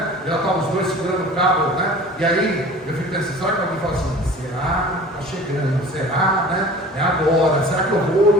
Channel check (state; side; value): normal; both; correlation 0.42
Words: Já estavam os dois segurando o cabo, né? E aí eu fico pensando, será que alguém fala assim, será? Está chegando, será, né? É agora, será que eu vou,